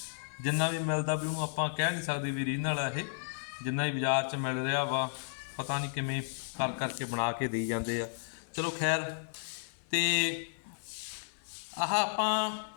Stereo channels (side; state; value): right; silent; 56 dB below the other